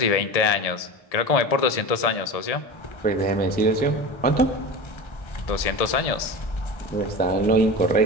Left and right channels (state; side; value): late; right; 1.7 ms